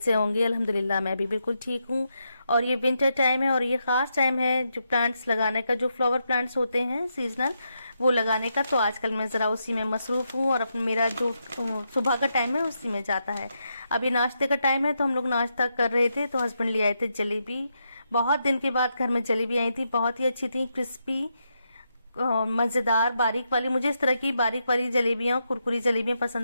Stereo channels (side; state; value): both; inverted; correlation -0.82